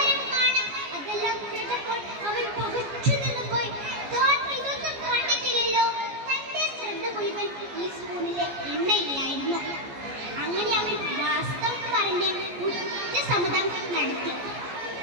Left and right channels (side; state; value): left; late; 14 ms